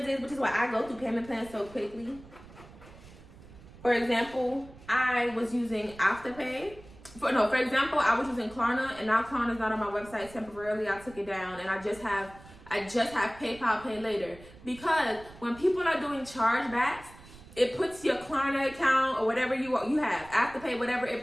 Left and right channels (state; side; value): noise; right; rumble, 20 dB below the sound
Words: is, which is why I go through payment plans so quickly. For example, I was using Afterpay. For example, I was using Klarna, and now Klarna's not on my website temporarily. I took it down, and I just have PayPal Pay Later, because when people are doing chargebacks, it puts your Klarna account or whatever you have, Afterpay, whatever,